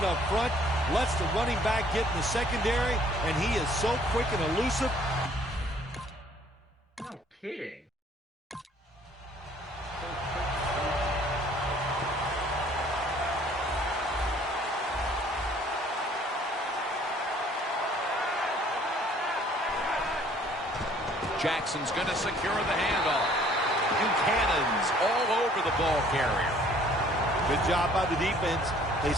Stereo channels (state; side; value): normal; both; correlation 0.58